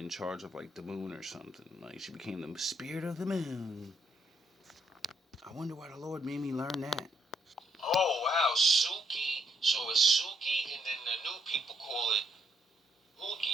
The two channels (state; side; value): normal; both; correlation 0.73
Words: charge of like the moon or something. Like she became the spirit of the moon. I wonder why the Lord made me learn that. Oh, wow, Suki. So it's Suki, and then the new people call it